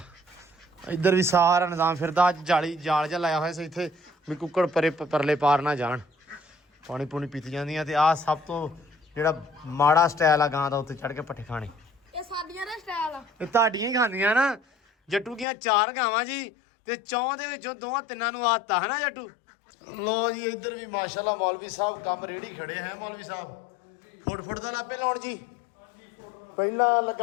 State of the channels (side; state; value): right; drops out; at 15.5 s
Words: ਇੱਧਰ ਵੀ ਸਾਰਾ ਨਿਜ਼ਾਮ ਫਿਰਦਾ। ਅੱਜ ਜਾਲ ਜਿਹਾ ਲਾਇਆ ਹੋਇਆ ਸੀ ਇੱਥੇ ਵੀ ਕੁੱਕੜ ਪਰਲੇ ਪਾਰ ਨਾ ਜਾਣ। ਪਾਣੀ ਪੂਣੀ ਪੀਤੀ ਜਾਂਦੀਆਂ। ਤੇ ਆਹ ਸਭ ਤੋਂ ਜਿਹੜਾ ਮਾੜਾ ਸਟਾਈਲ ਆ ਗਾਂ ਦਾ, ਉੱਤੇ ਚੜ੍ਹ ਕੇ ਪੱਠੇ ਖਾਣੇ। ਇਹ ਸਾਡੀਆਂ ਦਾ ਸਟਾਈਲ ਆ, ਇਹ ਤੁਹਾਡੀਆਂ ਹੀ ਖਾਂਦੀਆਂ ਨਾ। ਜੱਟੂ ਦੀਆਂ 4 ਗਾਵਾਂ ਜੀ, ਤੇ 4 ਦੇ ਵਿੱਚੋਂ 2-3 ਨੂੰ ਆਦਤ ਹੈ ਨਾ ਜੱਟੂ। ਲੋ ਜੀ ਇੱਧਰ ਵੀ ਮਾਸ਼ਾਅੱਲਾ ਮੌਲਵੀ ਸਾਹਿਬ ਕੰਮ ਰੇੜੀ ਖੜੇ ਹੈ। ਮੌਲਵੀ ਸਾਹਿਬ ਫੁੱਟ ਦਾ ਲਾਪੇ ਲਾਉਣ ਜੀ। ਪਹਿਲਾਂ